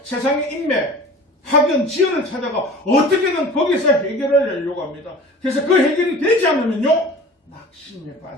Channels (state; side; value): normal; both; correlation 0.41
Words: 세상의 인맥 학연, 지연을 찾아가 어떻게든 거기서 해결을 하려고 합니다. 그래서 그 해결이 되지 않으면요 낙심에